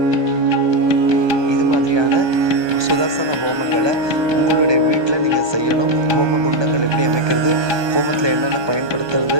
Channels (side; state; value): left; late; 1.2 ms